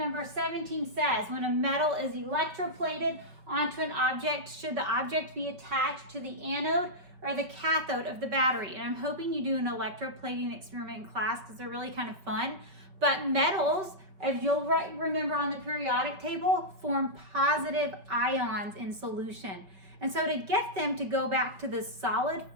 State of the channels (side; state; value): left; late; 5.3 ms